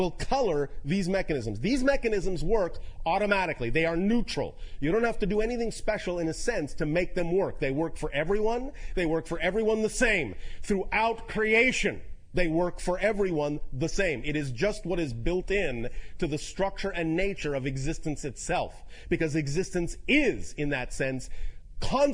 color these mechanisms. These mechanisms work automatically. They are neutral. You don't have to do anything special in a sense to make them work. They work for everyone. They work for everyone the same. Throughout creation, they work for everyone the same. It is just what is built in to the structure and nature of existence itself. Because existence is, in that sense,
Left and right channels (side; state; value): both; identical; correlation 1.00